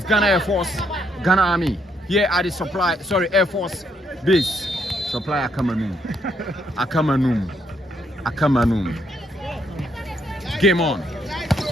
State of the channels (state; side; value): normal; both; correlation 0.74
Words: Ghana Air Force, Ghana Army, here at the Air Force base. Supply Akamanum. Game on.